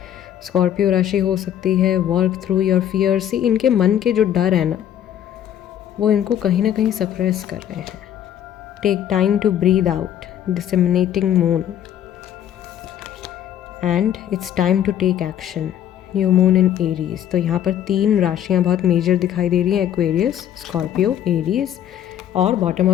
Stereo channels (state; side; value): quieter; right; 10.4 dB